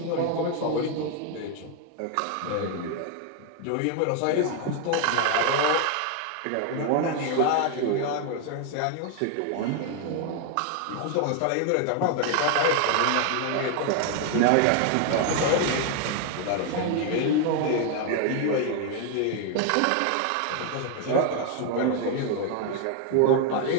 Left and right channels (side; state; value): both; different; correlation 0.00